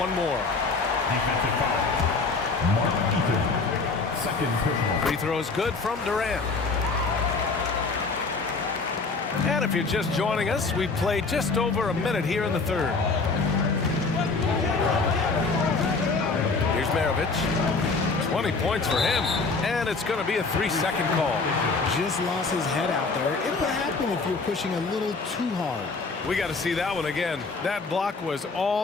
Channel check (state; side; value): quieter; right; 4.1 dB